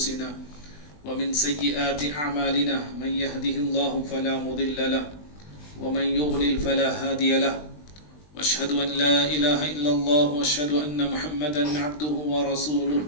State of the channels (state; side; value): late; right; 20 ms